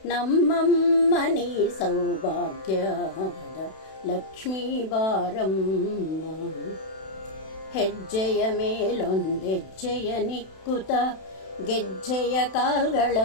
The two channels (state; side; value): late; right; 32 ms